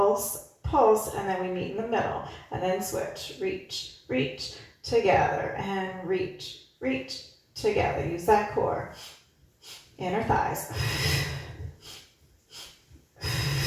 pulse, and then we meet in the middle. And then switch. Reach, reach, together. And reach, reach, together. Use that core. Inner thighs.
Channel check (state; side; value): identical; both; correlation 1.00